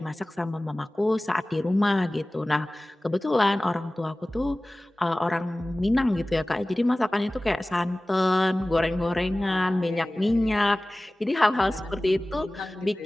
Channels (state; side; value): normal; both; correlation 0.98